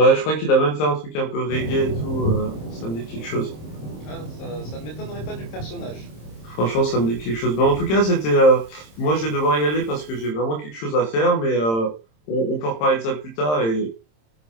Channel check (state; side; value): late; right; 26 ms